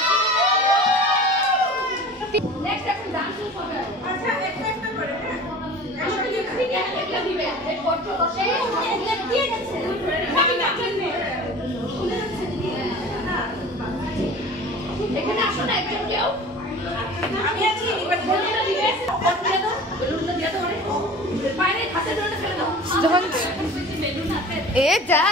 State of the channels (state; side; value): normal; both; correlation 0.40